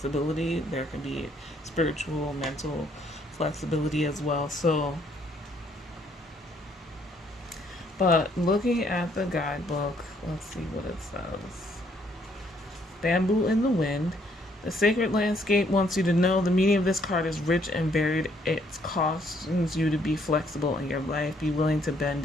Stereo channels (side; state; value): both; normal; correlation 0.67